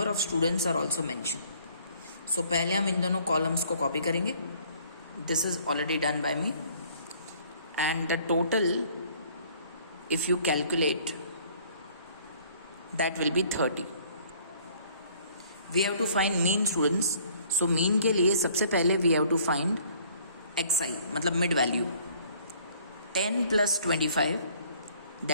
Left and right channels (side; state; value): both; inverted; correlation -0.57